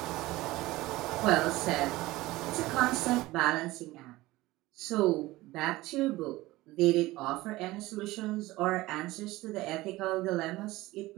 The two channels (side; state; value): left; quieter; 18.7 dB